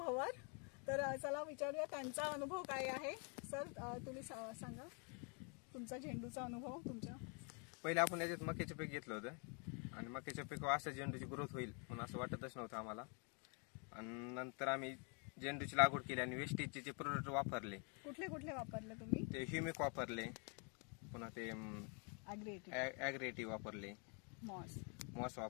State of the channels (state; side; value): quieter; right; 36.9 dB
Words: तर चला विचारूया त्यांचा अनुभव काय आहे। सर, तुम्ही सांगा तुमचा झेंडूचा अनुभव तुमच्या। पहिले आपण याच्यात मक्याचे पीक घेतलं होतं आणि मक्याच्या पिकावर असं झेंडूची ग्रोथ होईल म्हणून असं वाटतच नव्हतं आम्हाला। आणि नंतर आम्ही झेंडूची लागवड केली आणि वेस्टेजचे जे प्रोडक्ट वापरले। कुठले कुठले वापरले तुम्ही? ते ह्युमिक वापरले, पुन्हा ते ॲग्रेटिव्ह वापरले, मॉस